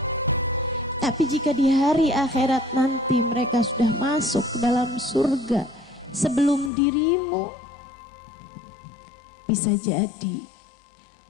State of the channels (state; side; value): drops out; right; at 6.7 s